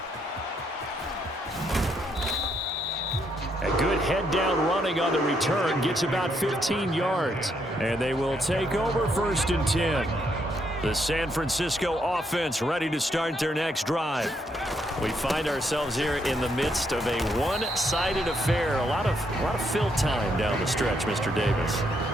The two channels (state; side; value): normal; both; correlation 0.75